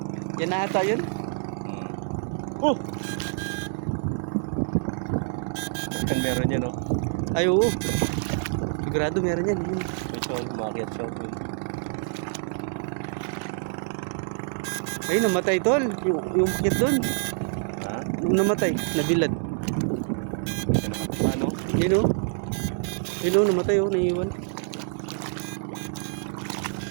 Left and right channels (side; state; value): left; silent; 58 dB below the other